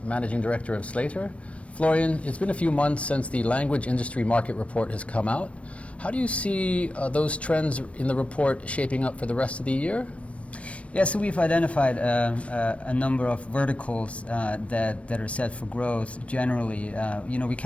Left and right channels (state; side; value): late; right; 0.063 ms